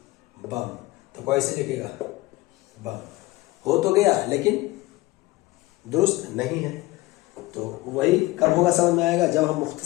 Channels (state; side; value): quieter; right; 19.8 dB